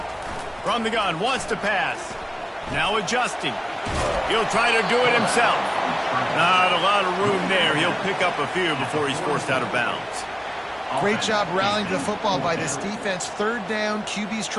From the gun, wants to pass. Now adjusting. He'll try to do it himself. Not a lot of room there. He'll pick up a few before he's forced out of bounds. Great job rallying to the football by this defense. Third down, QB's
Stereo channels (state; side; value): identical; both; correlation 1.00